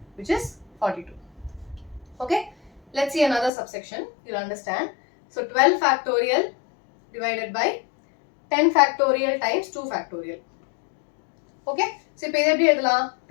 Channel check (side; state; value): right; drops out; at 3.5 s